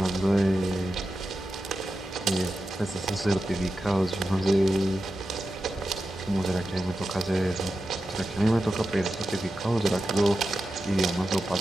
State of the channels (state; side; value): normal; both; correlation 0.91